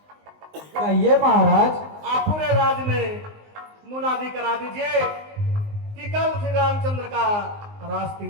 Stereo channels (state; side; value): late; left; 19 ms